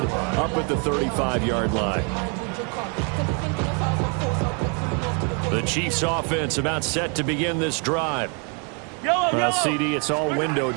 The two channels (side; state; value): left; quieter; 36.7 dB